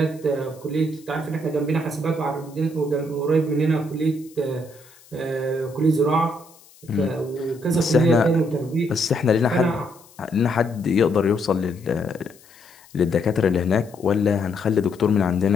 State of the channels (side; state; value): left; noise; hiss, 26 dB below the sound